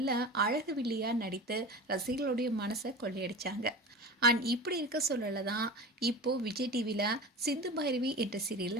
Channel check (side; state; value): both; normal; correlation 0.32